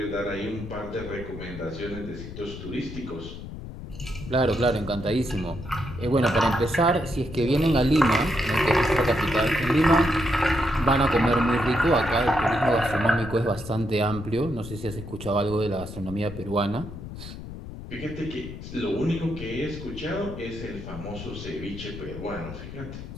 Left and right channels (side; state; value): left; noise; rumble, 11 dB below the sound